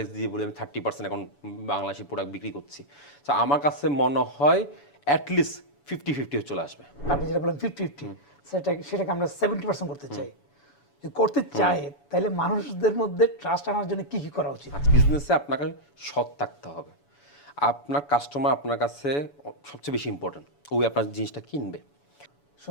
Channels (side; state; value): right; late; 7.0 ms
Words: দিয়ে বলি আমি 30% এখন বাংলাদেশি প্রোডাক্ট বিক্রি করছি। তো আমার কাছে মনে হয় অ্যাটলিস্ট 50-50 চলে আসবে। আপনি যেটা বলেন 50-50, সেটাকে আমরা 70% করতে চাই। যদি করতে চাই তাহলে মানুষদের মধ্যে ট্রাস্ট আনার জন্য কি করা উচিত? বিজনেসে আপনাকে সৎ থাকতে হবে। আপনার কাস্টমার আপনার কাছে সবচেয়ে বেশি ইম্পর্টেন্ট, ওই আপনার জিনিসটা কিনবে।